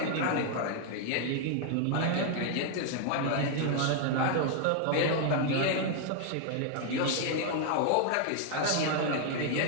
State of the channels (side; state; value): both; different; correlation 0.00